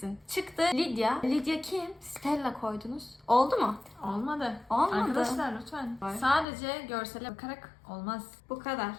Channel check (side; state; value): right; drops out; at 6.5 s